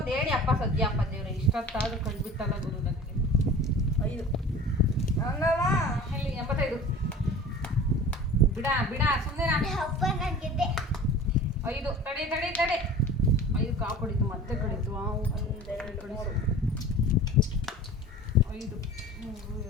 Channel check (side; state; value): both; normal; correlation 0.40